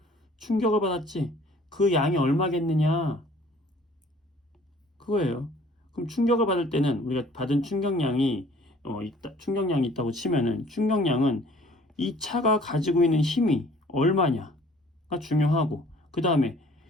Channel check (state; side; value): normal; both; correlation 0.54